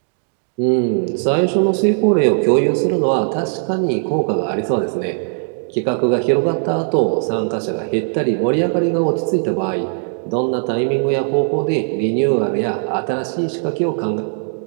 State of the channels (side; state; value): left; silent; 67 dB below the other